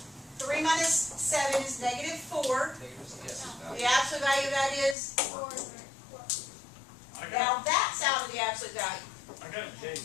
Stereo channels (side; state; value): right; drops out; at 5.0 s